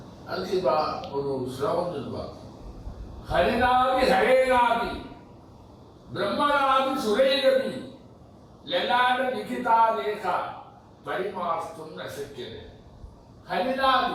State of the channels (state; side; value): identical; both; correlation 1.00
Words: அதுக்கு ஒரு ஸ்லோகம் சொல்லுவாங்க, ஹரிநாதி ஹரேநாதி பிரம்மநாதி சுரேரவி லலாட லிகிதா ரேகா பரிமார்த்தும் நசக்கியது.